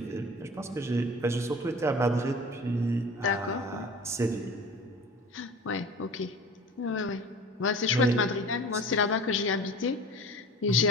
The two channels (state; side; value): normal; both; correlation 0.39